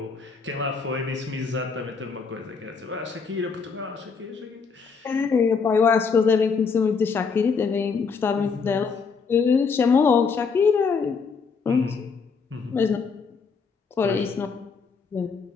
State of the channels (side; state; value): right; quieter; 5.4 dB